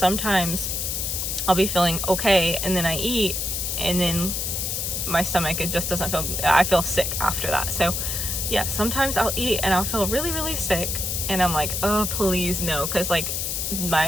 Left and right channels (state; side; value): noise; left; hiss, 1 dB below the sound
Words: I'll be feeling okay and then I eat and then my stomach, it just doesn't feel, I feel sick after that. So yeah, sometimes I'll eat and I'll feel really sick, and I'm like, oh please no, because like